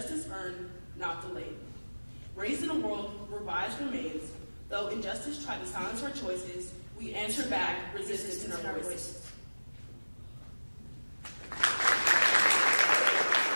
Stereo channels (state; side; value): inverted; both; correlation -1.00